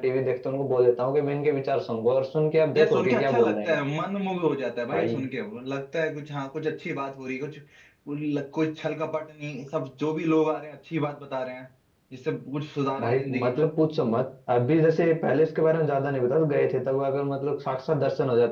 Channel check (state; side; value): identical; both; correlation 1.00